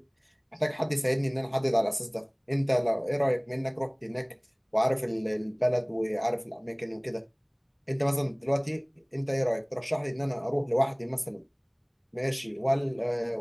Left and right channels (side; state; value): both; identical; correlation 1.00